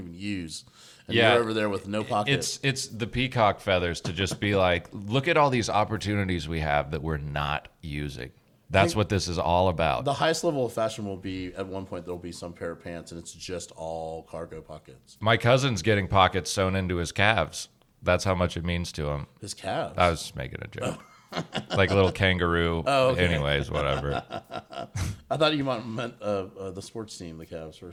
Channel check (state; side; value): identical; both; correlation 1.00